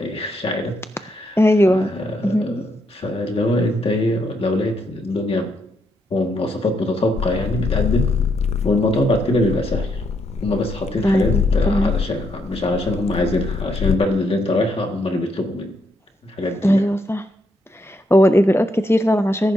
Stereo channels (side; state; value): both; normal; correlation 0.77